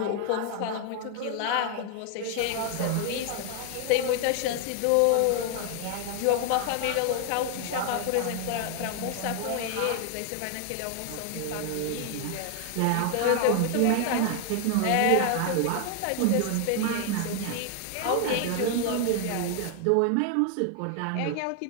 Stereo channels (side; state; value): both; different; correlation 0.00